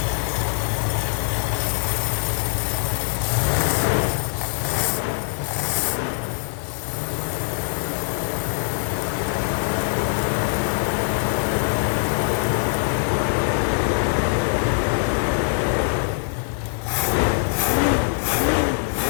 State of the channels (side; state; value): right; silent; digital silence